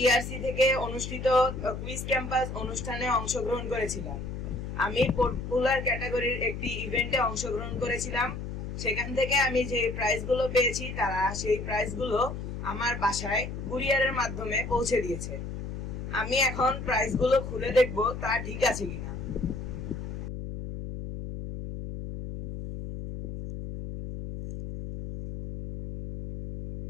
ইআরসি থেকে অনুষ্ঠিত কুইজ ক্যাম্পাস অনুষ্ঠানে অংশগ্রহণ করেছিলাম। আমি পপুলার ক্যাটাগরির একটি ইভেন্টে অংশগ্রহণ করেছিলাম। সেখান থেকে আমি যে প্রাইজগুলো পেয়েছি তারা সেই প্রাইজগুলো আমার বাসায় কুরিয়ারের মাধ্যমে পৌঁছে দিয়েছে। আমি এখন প্রাইজগুলো খুলে দেখব তা ঠিক আছে কিনা।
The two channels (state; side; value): noise; left; hum, 7 dB below the sound